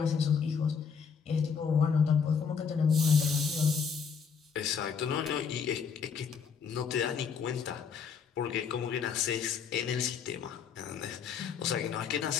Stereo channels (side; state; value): right; quieter; 6.4 dB